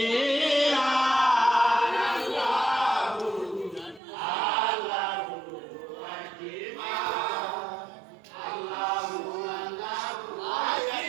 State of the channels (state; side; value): drops out; left; at 4.0 s